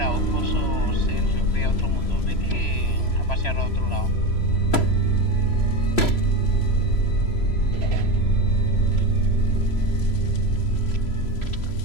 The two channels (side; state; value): right; late; 3.0 ms